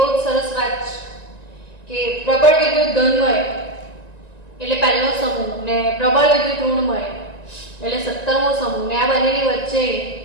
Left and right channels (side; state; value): right; late; 1.9 ms